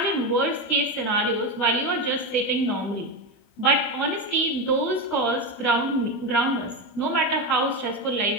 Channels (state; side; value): late; right; 20 ms